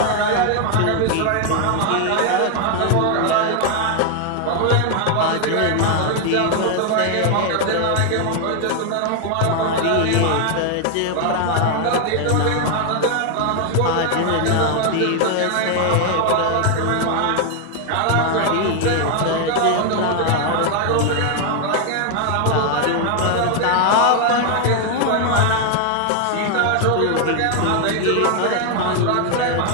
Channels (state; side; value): different; both; correlation 0.01